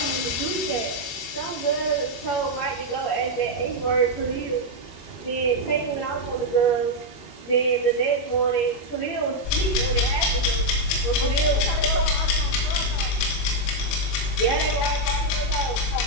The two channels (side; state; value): right; late; 21 ms